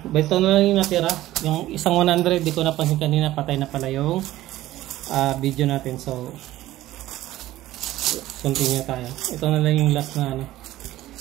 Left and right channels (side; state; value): left; quieter; 15.3 dB